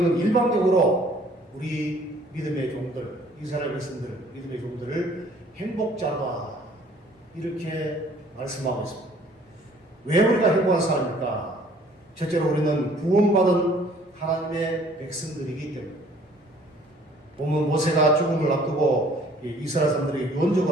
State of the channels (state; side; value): normal; both; correlation 0.56